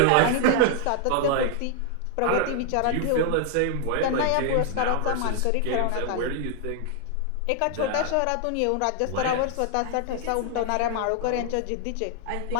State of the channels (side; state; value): both; different; correlation 0.00